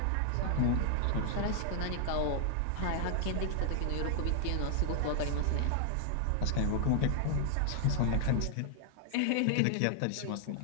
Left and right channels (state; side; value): different; both; correlation -0.01